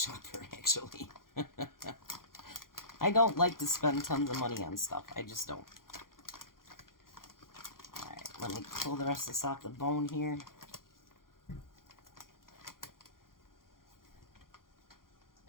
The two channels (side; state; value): right; late; 0.91 ms